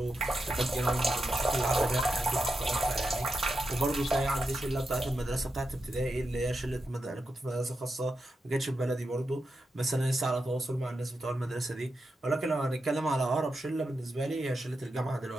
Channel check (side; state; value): both; normal; correlation 0.88